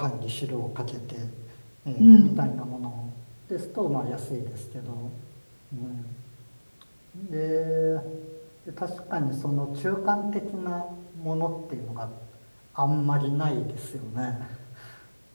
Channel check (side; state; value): both; inverted; correlation -1.00